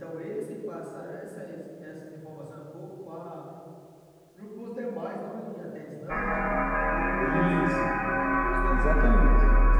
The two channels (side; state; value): both; identical; correlation 1.00